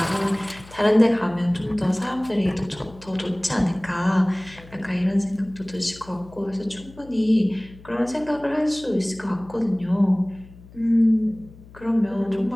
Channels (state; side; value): noise; left; hum, 21 dB below the sound